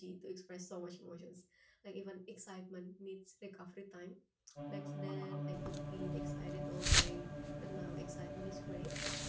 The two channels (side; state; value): both; identical; correlation 1.00